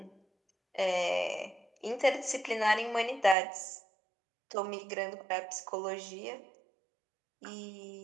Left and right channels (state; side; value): drops out; left; at 3.4 s